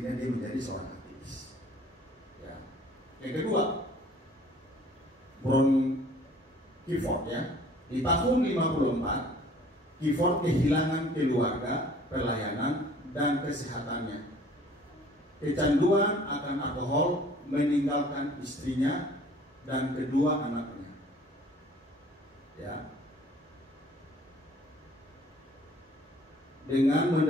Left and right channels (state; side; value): normal; both; correlation 0.53